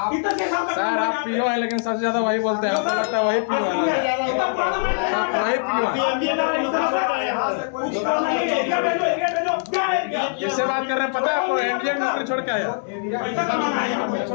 इतने के साथ का काम सर आप पीओ है, लेकिन सबसे ज्यादा वही बोलते हैं, आपको लगता है वही पीओ है। इतना पुराना माइंस है यहाँ पे। वही पीओ है। यहाँ से कुछ नहीं, एरिया भेजो, क्या एरिया? किससे बात कर रहे हैं पता है आपको? इंडियन मिलिट्री छोड़ के आए हो। पैसा कमाना है यहाँ पे।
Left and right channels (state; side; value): silent; right; digital silence